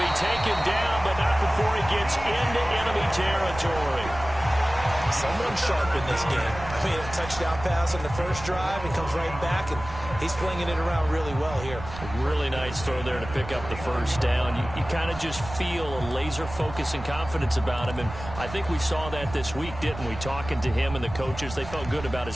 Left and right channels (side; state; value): right; noise; rumble, 12 dB below the sound